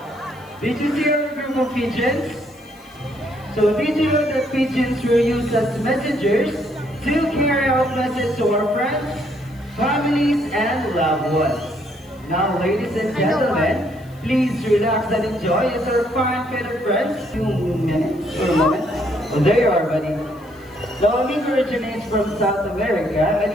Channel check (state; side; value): noise; left; hiss, 29 dB below the sound